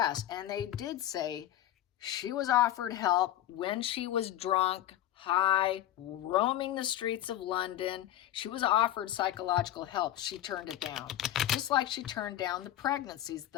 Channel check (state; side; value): quieter; right; 12.9 dB